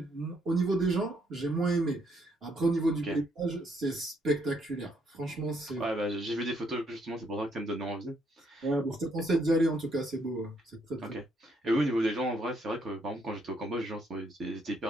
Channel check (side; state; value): both; normal; correlation 0.72